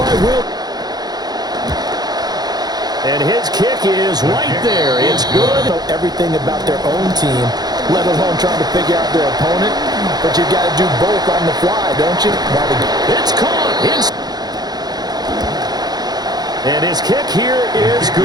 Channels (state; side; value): late; left; 0.19 ms